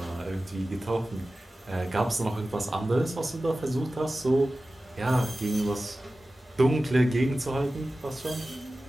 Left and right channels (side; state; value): both; normal; correlation 0.95